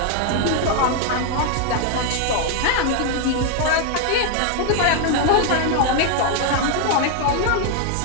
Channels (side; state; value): both; different; correlation 0.00